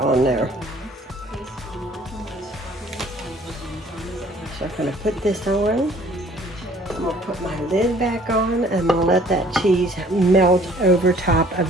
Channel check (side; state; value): both; normal; correlation 0.56